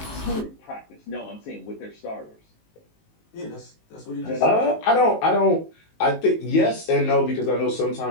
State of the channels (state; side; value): late; right; 19 ms